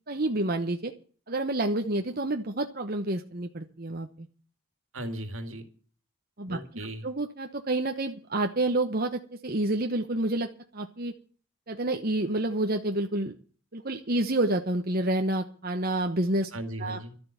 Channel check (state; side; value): normal; both; correlation 0.29